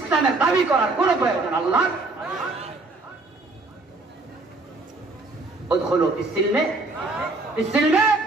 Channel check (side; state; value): left; quieter; 3.2 dB